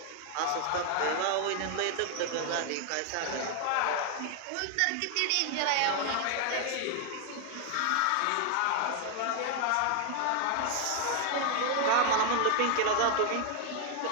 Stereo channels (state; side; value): different; both; correlation 0.00